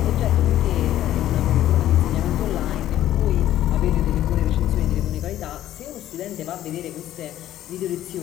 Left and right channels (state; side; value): quieter; right; 12.8 dB